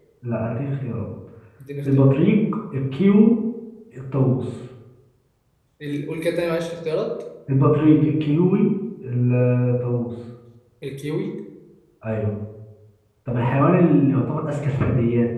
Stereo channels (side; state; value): both; identical; correlation 1.00